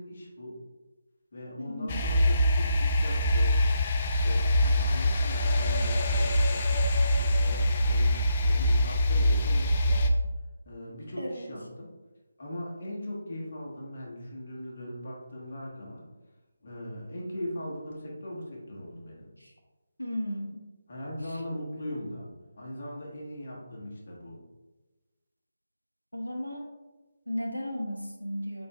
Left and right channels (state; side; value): inverted; both; correlation -0.79